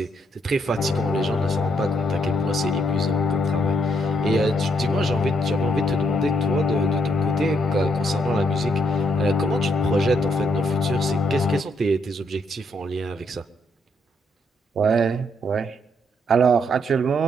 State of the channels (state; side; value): normal; both; correlation 0.74